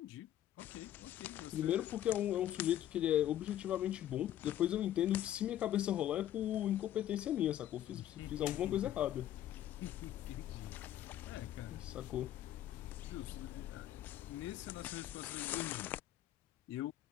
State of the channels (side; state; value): right; quieter; 12.0 dB